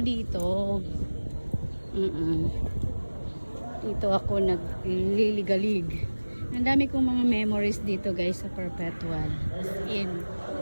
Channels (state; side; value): inverted; both; correlation -1.00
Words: dito. Dito ako nagliligalig. Ang dami kong mga memories dito guys sa perpetual. As in.